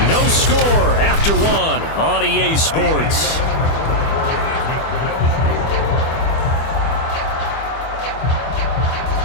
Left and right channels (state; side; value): late; right; 25 ms